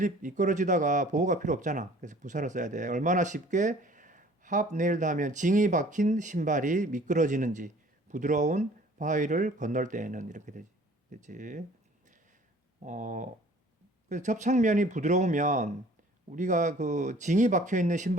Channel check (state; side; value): normal; both; correlation 0.52